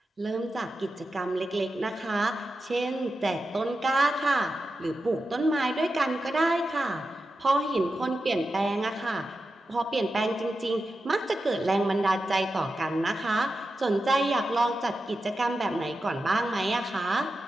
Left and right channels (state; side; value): normal; both; correlation 0.91